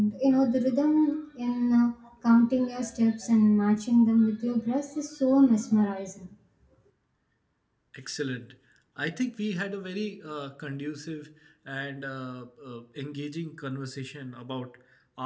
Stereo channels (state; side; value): identical; both; correlation 1.00